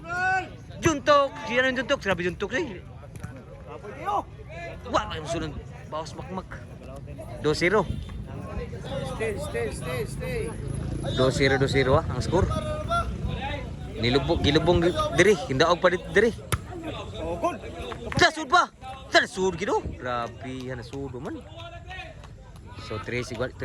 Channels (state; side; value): identical; both; correlation 1.00